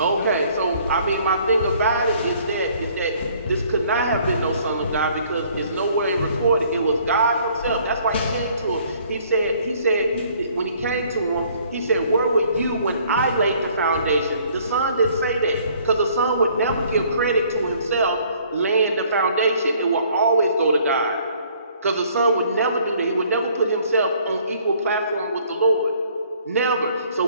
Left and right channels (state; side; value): inverted; both; correlation -0.59